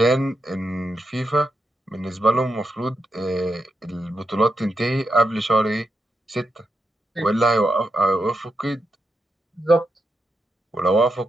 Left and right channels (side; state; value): both; normal; correlation 0.85